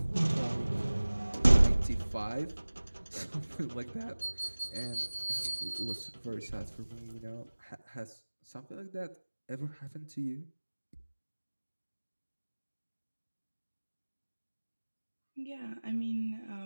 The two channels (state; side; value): inverted; both; correlation -1.00